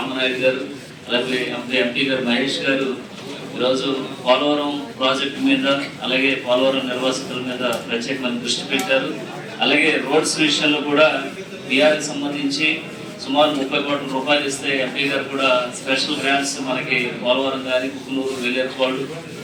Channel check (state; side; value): identical; both; correlation 1.00